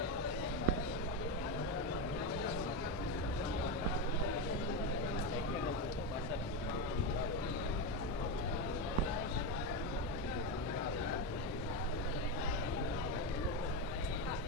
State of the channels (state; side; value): normal; both; correlation 0.12